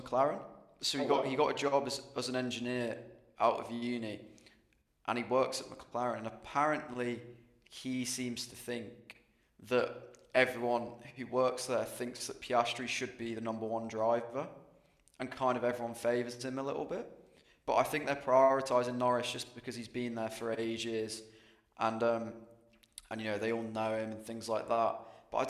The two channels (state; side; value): identical; both; correlation 1.00